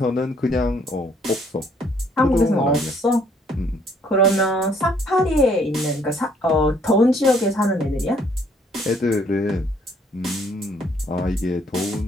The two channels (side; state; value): both; normal; correlation 0.64